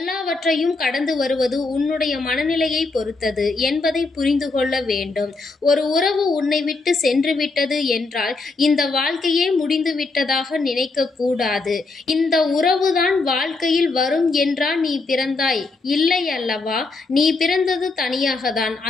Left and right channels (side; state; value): right; quieter; 3.7 dB